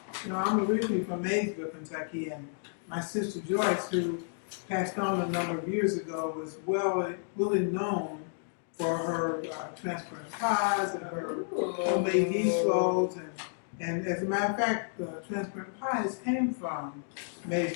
You know, I'm originally from Maysville, Kentucky, and my sister Joyce, who passed on a number of years ago, was really known for her transparent pies and her homemade yeast rolls. And as a matter of fact, the transparent pies came from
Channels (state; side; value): silent; right; digital silence